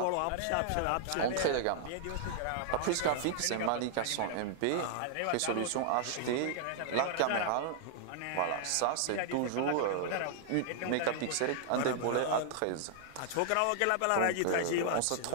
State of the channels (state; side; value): different; both; correlation -0.01